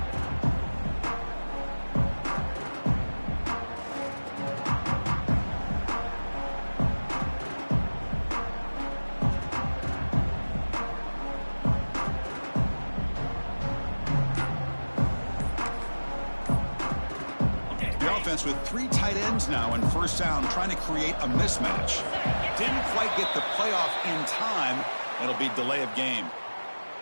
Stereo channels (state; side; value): inverted; both; correlation -1.00